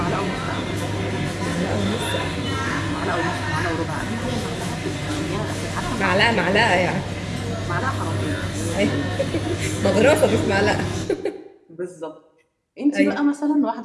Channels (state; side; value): identical; both; correlation 1.00